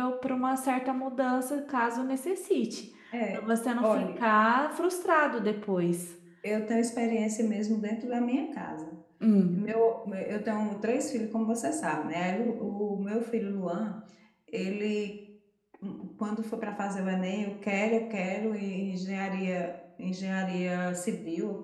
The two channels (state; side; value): identical; both; correlation 1.00